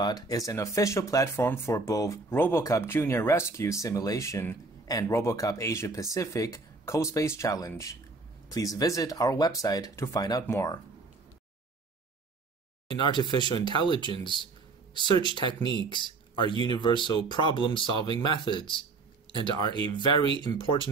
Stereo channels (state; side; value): quieter; left; 3.8 dB